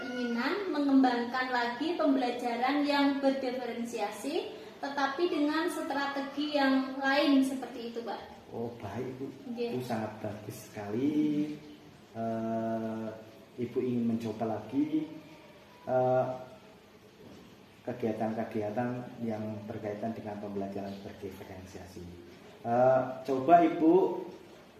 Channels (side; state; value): both; identical; correlation 1.00